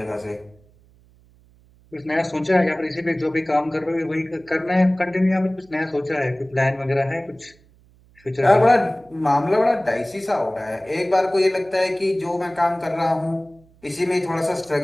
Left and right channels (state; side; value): noise; right; hum, 30 dB below the sound